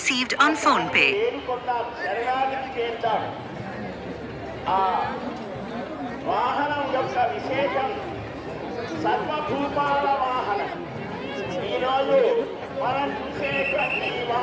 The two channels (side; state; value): both; identical; correlation 1.00